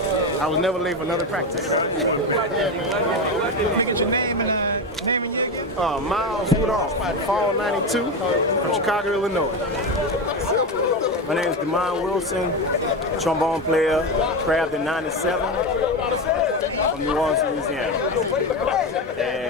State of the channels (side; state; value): both; normal; correlation 0.17